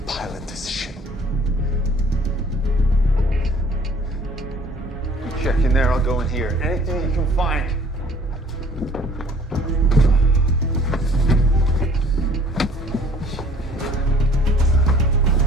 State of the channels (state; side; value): normal; both; correlation 0.53